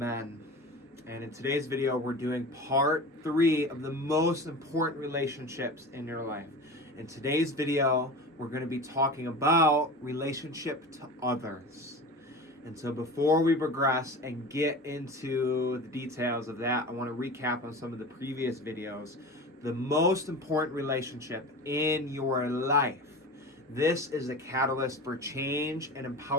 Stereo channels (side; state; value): both; normal; correlation 0.32